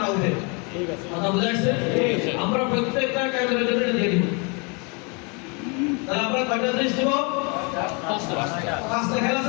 উঠে। ঠিক আছে, কথা বুঝা যাচ্ছে? আমরা প্রত্যেকটা কাজের জন্য এটা দিয়ে দিব। তাহলে আমরা কয়টা জিনিস দিব? পাঁচটা খেলা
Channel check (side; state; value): right; quieter; 32.8 dB